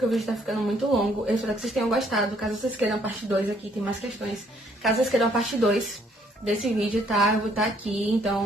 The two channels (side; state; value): both; normal; correlation 0.66